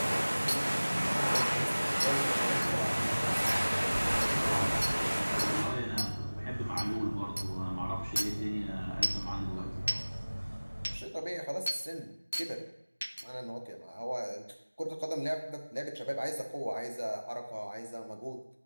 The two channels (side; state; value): both; inverted; correlation -1.00